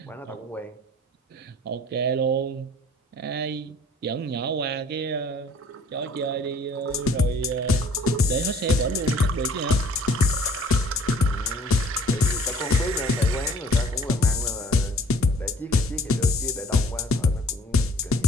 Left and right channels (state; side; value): normal; both; correlation 0.54